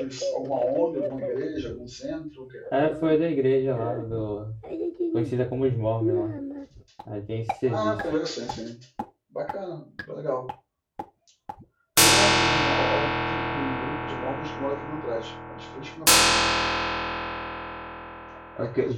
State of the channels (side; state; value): both; identical; correlation 1.00